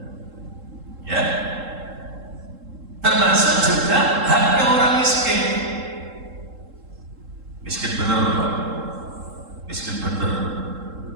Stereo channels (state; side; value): late; left; 3.7 ms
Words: Ya. Termasuk juga haknya orang miskin. Miskin bener, Pak. Miskin bener.